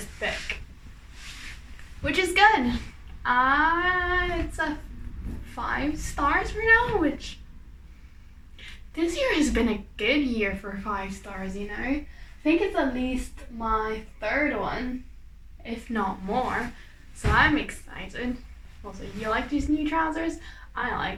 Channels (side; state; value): both; identical; correlation 1.00